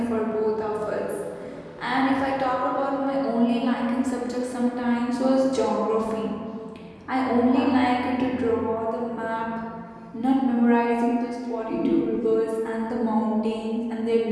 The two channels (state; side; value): identical; both; correlation 1.00